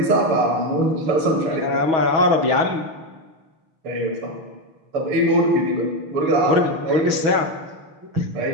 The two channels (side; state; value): left; late; 6.3 ms